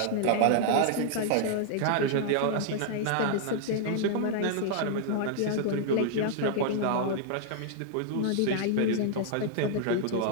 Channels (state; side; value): different; both; correlation -0.01